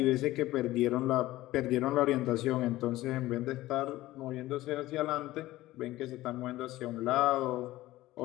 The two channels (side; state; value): right; quieter; 16.8 dB